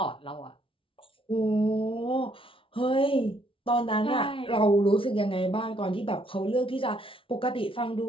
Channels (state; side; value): late; right; 0.25 ms